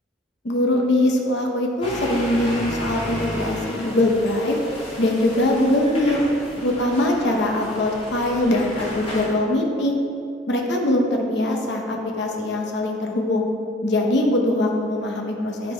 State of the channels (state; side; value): normal; both; correlation 0.50